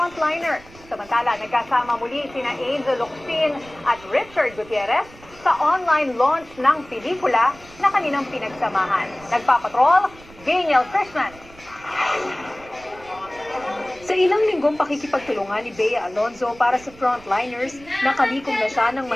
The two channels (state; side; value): noise; right; rumble, 22 dB below the sound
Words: Samantala, nagkasama muli sina Angel Locsin at Richard Gutierrez sa online launch ng pelikula na kanilang pinagsamahan. Nagpapatrol, Daniel Christman. Sa ilang linggong pakikipagtulungan ni Bea Alonzo para sa frontliners, nakalikom na siya ng